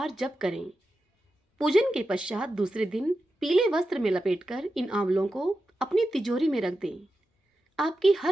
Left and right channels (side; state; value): both; normal; correlation 0.91